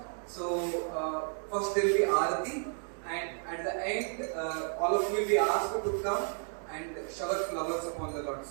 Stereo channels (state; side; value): silent; left; 56 dB below the other